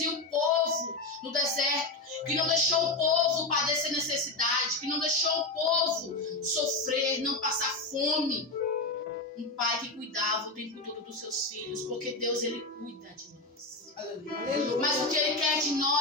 o povo no deserto, que não deixou o povo padecer necessidade, que não deixou o povo sofrer, não passar fome. Um pai que cuidava o tempo todo dos seus filhos, porque Deus, ele cuida de nós. Mas o que ele quer de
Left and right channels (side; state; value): right; quieter; 3.1 dB